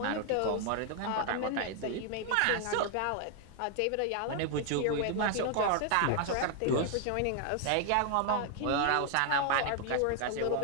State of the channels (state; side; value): different; both; correlation 0.00